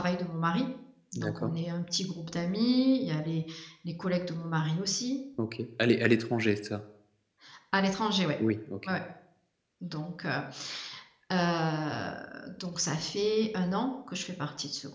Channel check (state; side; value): identical; both; correlation 1.00